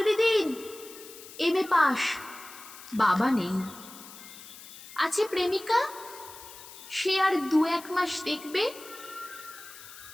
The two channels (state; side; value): noise; left; hiss, 16 dB below the sound